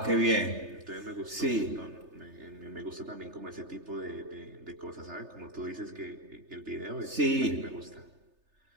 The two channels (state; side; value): late; left; 3.3 ms